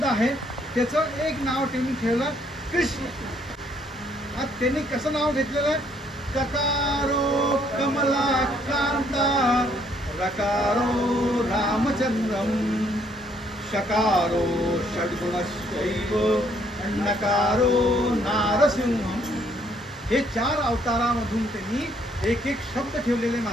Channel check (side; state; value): both; normal; correlation 0.67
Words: आहेत. त्याचं एक नाव त्यांनी ठेवलं कृष्ण. आज त्यांनी कसं नाव घेतलेलं आहे? ककारो कमला कांता रकारो रामचंद्रम शकारो षड्गुणशैव नकारो नारसिंहम. हे 4 अवतारामधून त्यांनी एक शब्द ठेवलेले